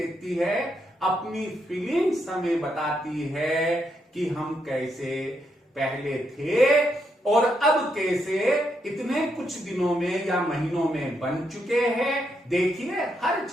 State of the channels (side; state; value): both; normal; correlation 0.79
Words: है, अपनी फीलिंग्स हमें बताती है कि हम कैसे पहले थे और अब कैसे इतने कुछ दिनों में या महीनों में बन चुके हैं। देखिए, हर